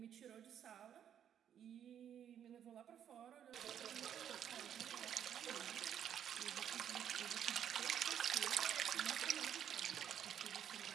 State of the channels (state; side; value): quieter; left; 9.4 dB